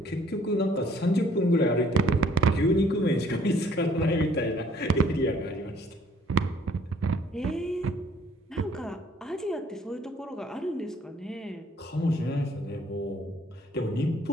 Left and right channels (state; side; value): normal; both; correlation 0.60